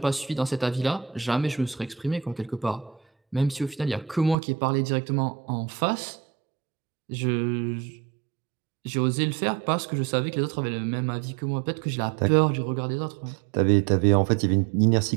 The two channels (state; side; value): drops out; left; at 4.4 s